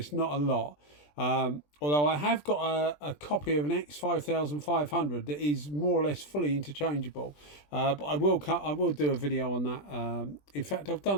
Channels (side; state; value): right; late; 20 ms